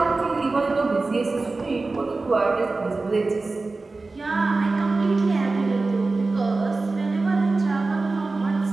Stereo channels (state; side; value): quieter; left; 3.6 dB